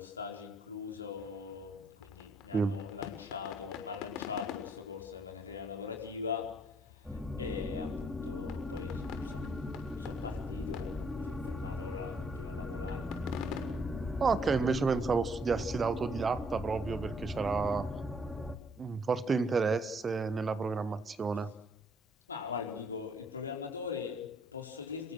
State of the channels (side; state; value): both; normal; correlation 0.68